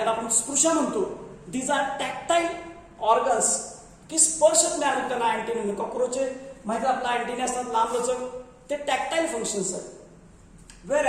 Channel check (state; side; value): identical; both; correlation 1.00